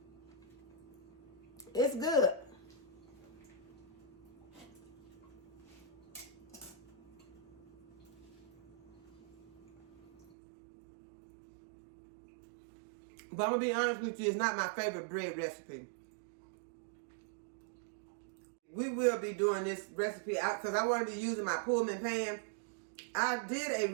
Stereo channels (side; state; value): left; drops out; at 10.2 s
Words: It's good. But I'm going to be honest with you, it's not my favorite bread recipe. We will be doing this recipe out because I want to be using my Pullman Pan. I did a